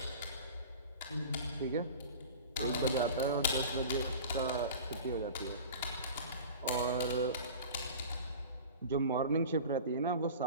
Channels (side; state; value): both; inverted; correlation -0.37